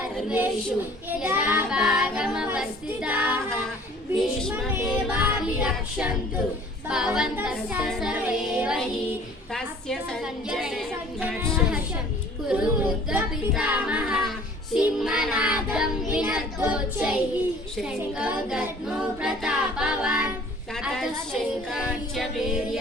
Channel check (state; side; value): normal; both; correlation 0.51